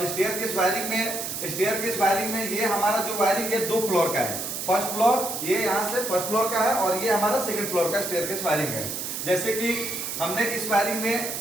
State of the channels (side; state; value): right; noise; hiss, 5 dB below the sound